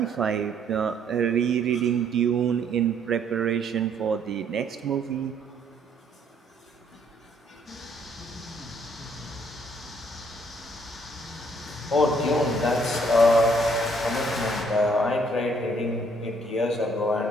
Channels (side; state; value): both; normal; correlation 0.65